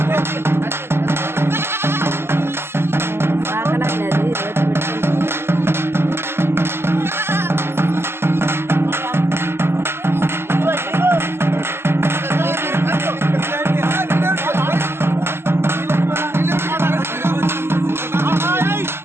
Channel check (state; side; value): late; left; 0.12 ms